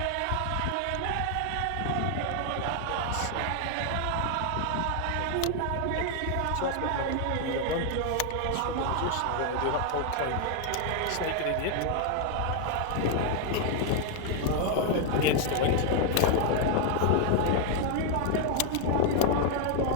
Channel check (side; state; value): both; different; correlation 0.00